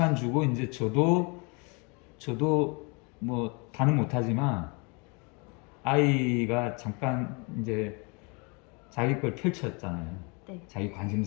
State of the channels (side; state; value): right; quieter; 31.4 dB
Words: 주고 이제 저도 뭐 다는 못하지만 아이가 잠깐 이제 자기 걸 펼쳤잖아요. 네. 자기